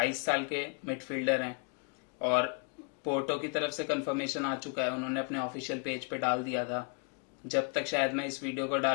साल के मिडफील्डर हैं, और पोर्टो की तरफ से कंफर्मेशन आ चुका है, उन्होंने अपने ऑफिशियल पेज पे डाल दिया था। जब तक शायद मैं इस वीडियो को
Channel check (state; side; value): quieter; right; 38.7 dB